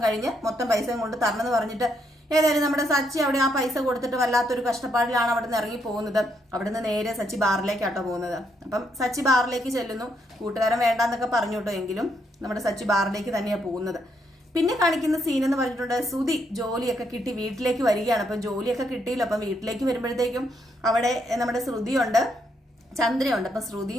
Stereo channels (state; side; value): normal; both; correlation 0.76